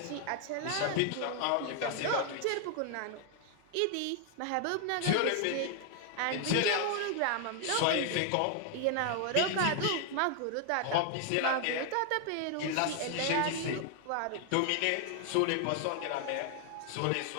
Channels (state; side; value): different; both; correlation 0.00